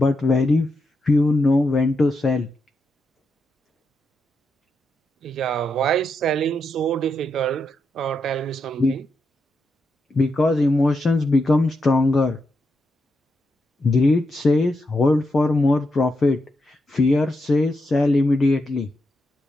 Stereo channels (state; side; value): normal; both; correlation 0.84